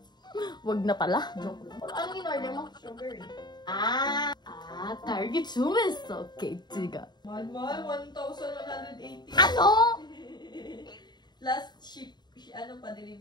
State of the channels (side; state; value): right; late; 0.21 ms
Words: wag na pala. Joke lang. Ano in-order mo? Sugar. Target sumiso. Okay, tiga. Mahal, 1,180. Ano? Last ship, ano pa,